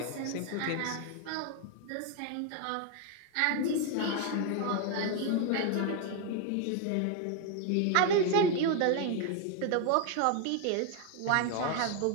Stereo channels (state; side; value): different; both; correlation 0.01